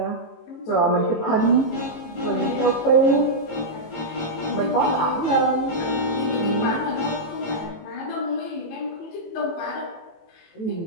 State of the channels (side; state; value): right; late; 18 ms